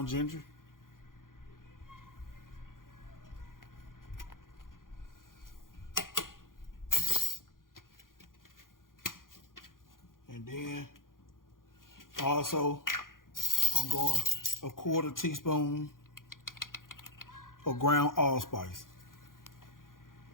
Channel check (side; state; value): right; late; 0.90 ms